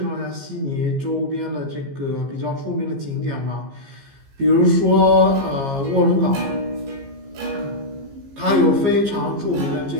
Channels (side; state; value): left; late; 15 ms